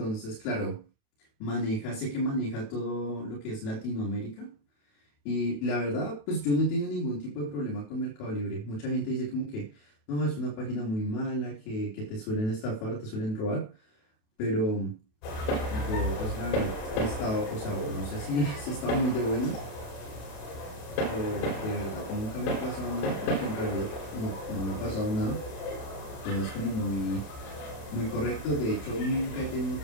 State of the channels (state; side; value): late; right; 28 ms